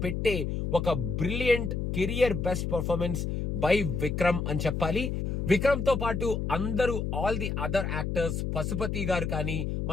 పెట్టే ఒక brilliant career best performance by Vikram అని చెప్పాలి. విక్రమ్ తో పాటు అందరూ all the other actors, Pasupathy garu కానీ,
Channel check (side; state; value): left; noise; hum, 1 dB below the sound